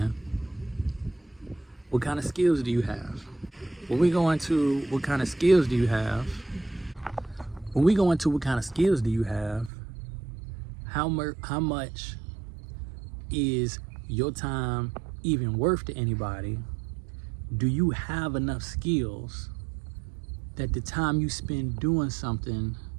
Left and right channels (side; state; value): left; drops out; at 9.7 s